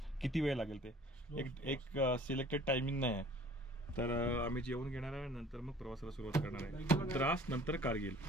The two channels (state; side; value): normal; both; correlation 0.50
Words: किती वेळ लागेल. ते एक सिलेक्टेड टायमिंग नाही आहे. तर आम्ही जेवून घेणार आहे, नंतर मग प्रवासाला सुरुवात करणार आहे. द्रास नंतर कारगिल.